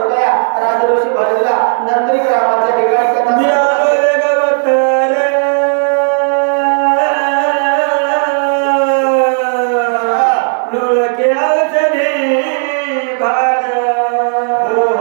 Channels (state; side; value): silent; left; digital silence